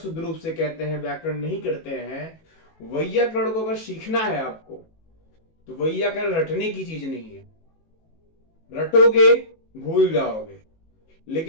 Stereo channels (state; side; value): late; right; 18 ms